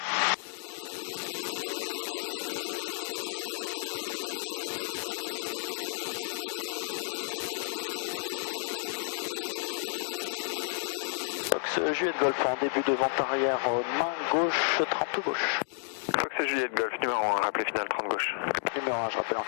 Fox Juliette Golf en début de vente arrière, main gauche, 30 gauche. Fox Juliette Golf, numéro 1, rappelez finale 30 gauche. Numéro 1, je rappelle en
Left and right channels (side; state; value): right; silent; 57 dB below the other